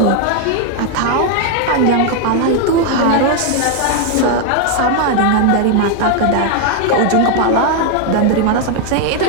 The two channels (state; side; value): different; both; correlation 0.01